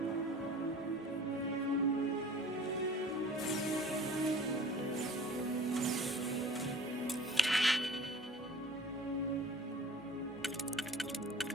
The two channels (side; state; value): both; normal; correlation 0.45